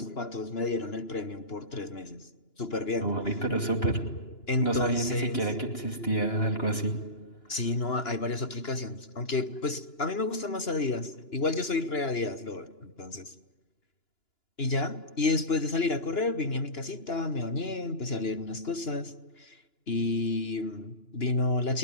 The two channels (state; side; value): late; right; 2.9 ms